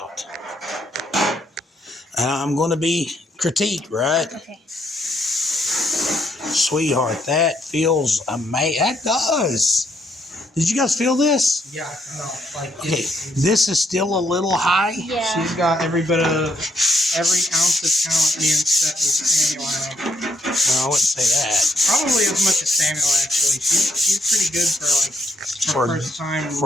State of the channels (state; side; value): normal; both; correlation 0.73